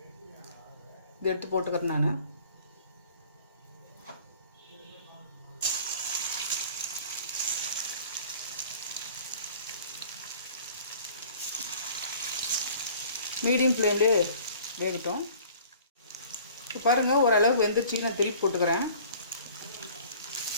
இது எடுத்து போட்டுக்கிறேன் நான். மீடியம் ஃப்ளேம்லேயே வேகட்டும். இப்போ பாருங்கள், ஓரளவுக்கு வெந்துருச்சு. நான் திருப்பி போட்டுக்கிறேன்.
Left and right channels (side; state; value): both; inverted; correlation -0.49